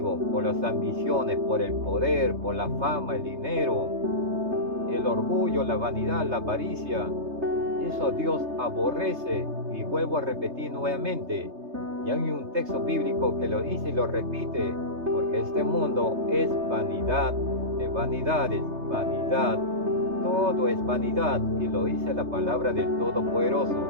por las ambiciones, por el poder, por la fama, el dinero, el orgullo, la vanidad, la avaricia. Eso Dios aborrece, y vuelvo a repetir nuevamente. Y hay un texto bíblico que lo dice y lo repite, porque este mundo es vanidad de vanidades, vanidad. Todo es vanidad, y lo dice la palabra del Todopoderoso,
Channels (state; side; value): late; left; 3.3 ms